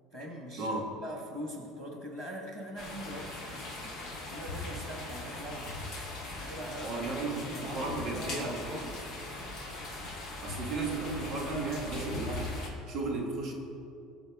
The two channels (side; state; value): both; normal; correlation 0.36